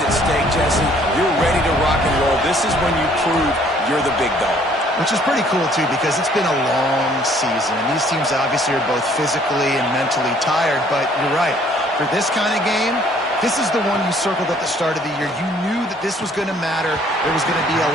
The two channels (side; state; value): both; normal; correlation 0.60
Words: at stake, Jesse. You're ready to rock and roll. This is when you prove you're the big dog. Which is pretty cool, too, because it's been a long season. And these teams obviously are both physically and mentally tired. But you're right. For this kind of game, This is the one you circled at the start of the year. You knew that this was going to matter. There was going to be a